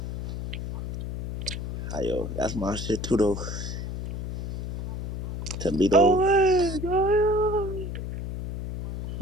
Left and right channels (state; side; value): noise; left; hum, 6 dB below the sound